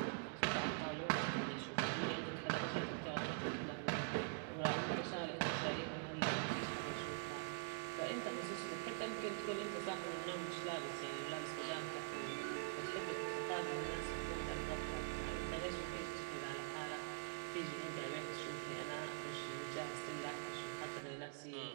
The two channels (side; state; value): left; quieter; 38.0 dB